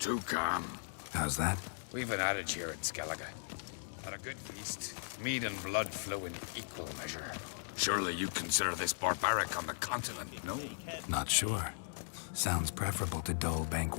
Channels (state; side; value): silent; right; digital silence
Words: calm. How's that? We've an adage here at Skellige. At a good feast, mead and blood flow in equal measure. Surely you consider this barbaric on the continent, no? Not sure. Sounds preferable to dull